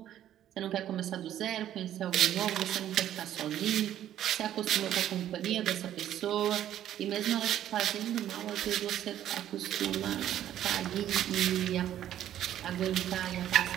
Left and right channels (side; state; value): left; quieter; 11.6 dB